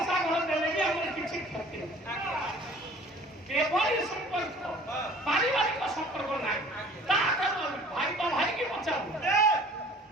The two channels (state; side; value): normal; both; correlation 0.49